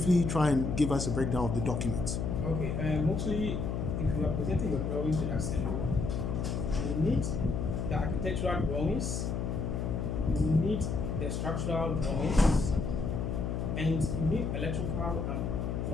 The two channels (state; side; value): noise; left; hum, 1 dB below the sound